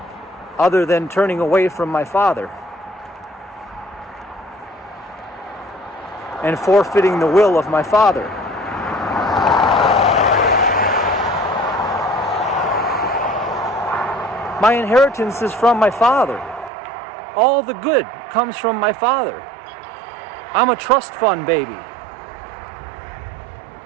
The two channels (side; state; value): left; drops out; at 16.7 s